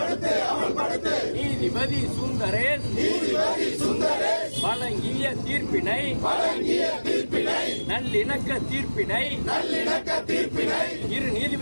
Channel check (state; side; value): inverted; both; correlation -1.00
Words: நீதிபதி சுந்தரேஷ் வழங்கிய தீர்ப்பினை நல்லிணக்க தீர்ப்பினை இரு